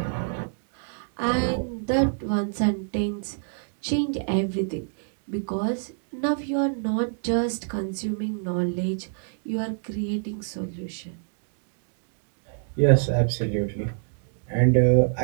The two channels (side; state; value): left; silent; digital silence